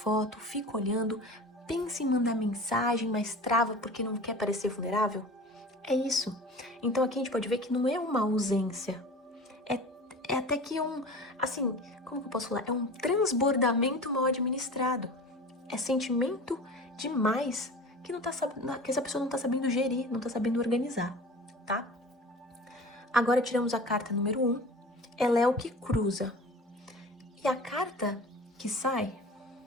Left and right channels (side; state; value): both; normal; correlation 0.38